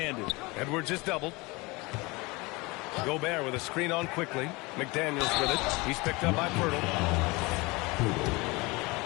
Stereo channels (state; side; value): quieter; right; 24.5 dB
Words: Edwards is doubled. Gobert with a screen on quickly. McDaniels with it. He's picked up by Pirtle.